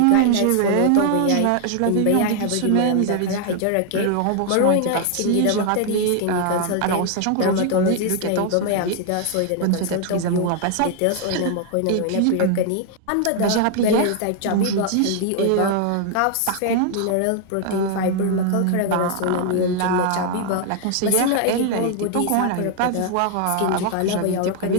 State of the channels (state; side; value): different; both; correlation 0.00